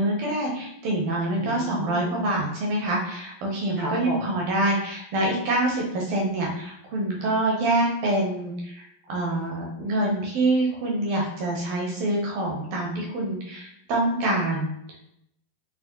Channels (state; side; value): late; left; 11 ms